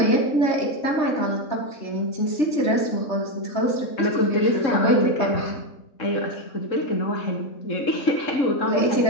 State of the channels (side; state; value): right; late; 3.7 ms